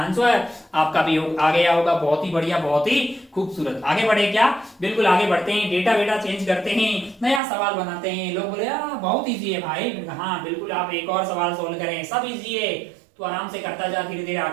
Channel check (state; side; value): drops out; left; at 7.4 s